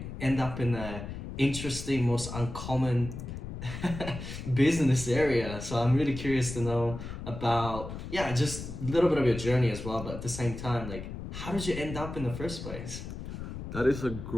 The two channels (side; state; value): left; noise; rumble, 8 dB below the sound